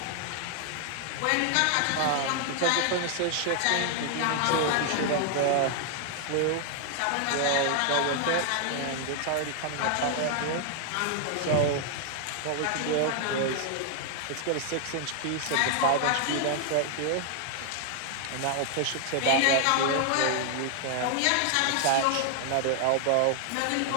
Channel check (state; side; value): different; both; correlation 0.00